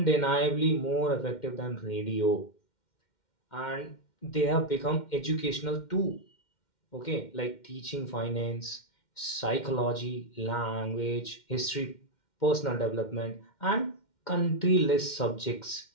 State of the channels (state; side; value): late; right; 2.1 ms